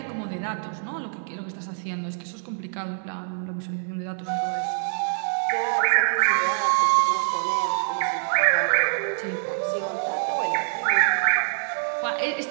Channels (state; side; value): silent; left; 62 dB below the other